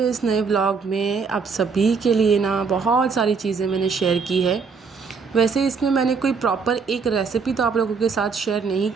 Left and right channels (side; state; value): left; quieter; 5.3 dB